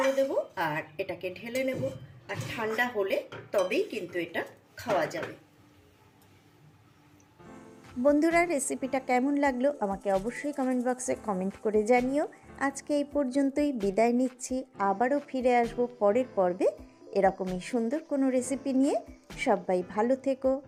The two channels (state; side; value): identical; both; correlation 1.00